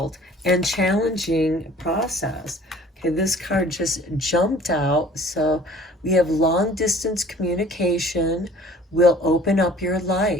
and challenging process. Okay, this card just jumped out. So we have long distance communication will open up your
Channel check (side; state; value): both; normal; correlation 0.50